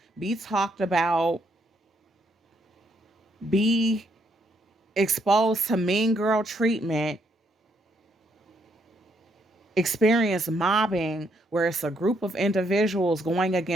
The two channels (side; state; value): both; normal; correlation 0.73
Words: be talked about, be exposed to mean girl treatment, experience mobbing where it's a group of individuals going